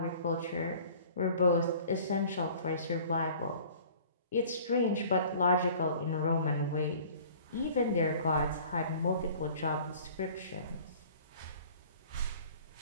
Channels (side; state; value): both; inverted; correlation -0.48